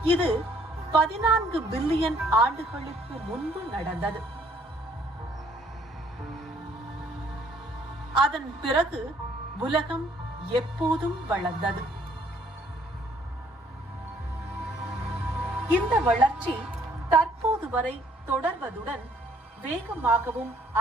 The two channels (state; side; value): normal; both; correlation 0.62